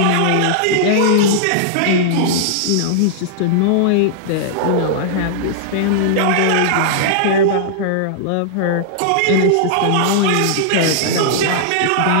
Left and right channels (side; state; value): both; different; correlation -0.01